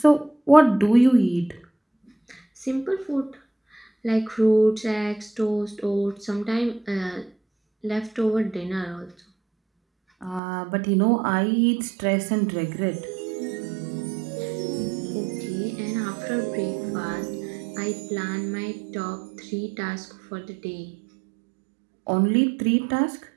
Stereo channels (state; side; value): drops out; left; at 10.4 s